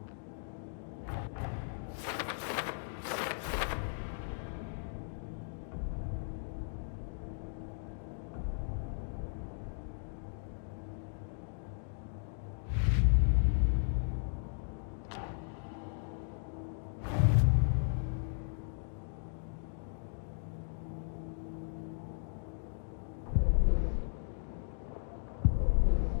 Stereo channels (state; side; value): silent; right; digital silence